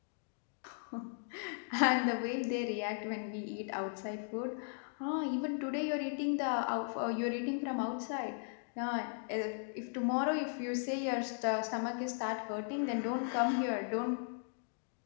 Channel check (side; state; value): right; silent; digital silence